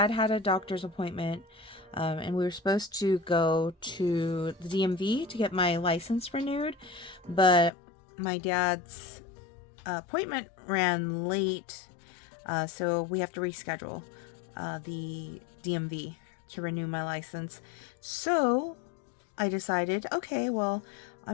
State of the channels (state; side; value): drops out; right; at 7.7 s